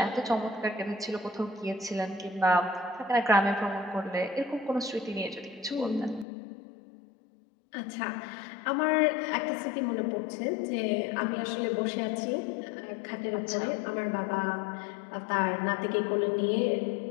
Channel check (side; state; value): right; drops out; at 6.2 s